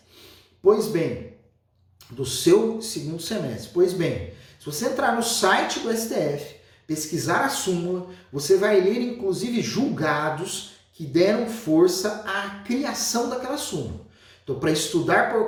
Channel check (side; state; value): both; identical; correlation 1.00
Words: Pois bem, do seu segundo semestre. Pois bem, se você entrar no site do STF, pesquisar a súmula, você vai ler inclusive julgados que deram força à criação daquela súmula. Então, para estudar